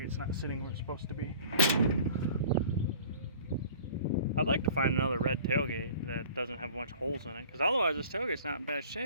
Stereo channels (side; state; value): both; inverted; correlation -0.46